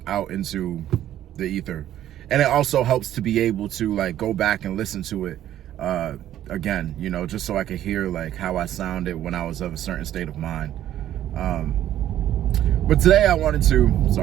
out into the ether. And it also helps to be able to like go back and listen to it again, just so I could hear like how I sounded when I was of a certain state of mind. But today I wanted to,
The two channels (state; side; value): quieter; left; 12.0 dB